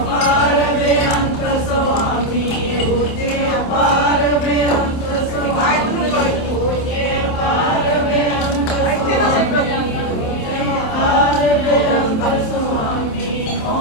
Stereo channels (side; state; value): right; late; 27 ms